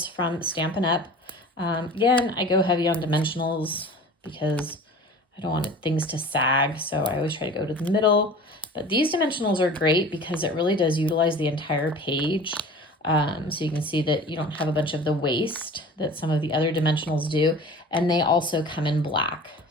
from Stampin' Up. Again, I go heavy on dimensionals because I don't want things to sag. So I always try to go to the middle. But these dimensionals are great because it really does utilize the entire page. So you can see that you don't have a bunch of the waste that some of the other dimensionals do, and they also come in black.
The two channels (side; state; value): both; normal; correlation 0.40